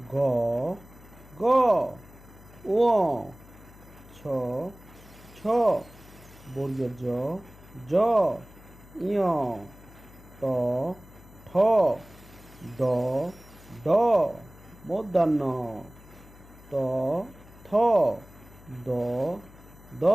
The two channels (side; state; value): left; noise; hum, 22 dB below the sound